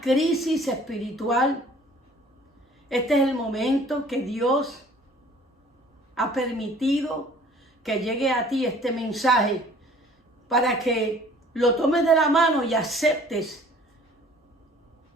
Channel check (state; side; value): normal; both; correlation 0.52